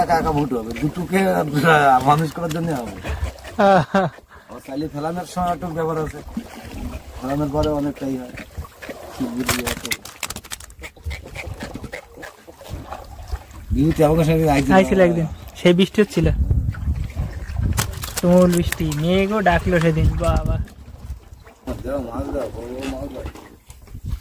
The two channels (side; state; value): both; identical; correlation 1.00